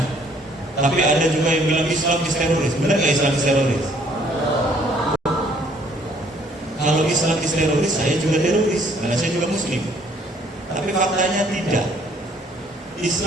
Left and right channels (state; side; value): normal; both; correlation 0.62